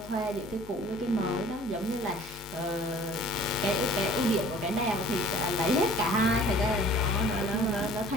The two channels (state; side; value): normal; both; correlation 0.51